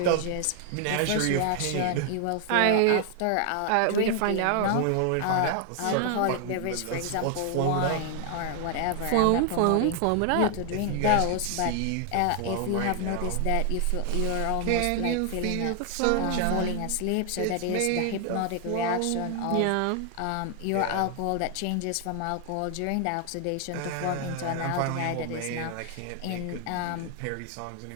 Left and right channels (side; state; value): both; different; correlation 0.00